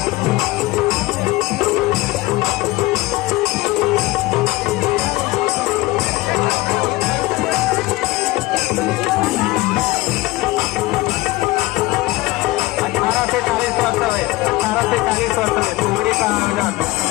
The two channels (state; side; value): quieter; right; 19.7 dB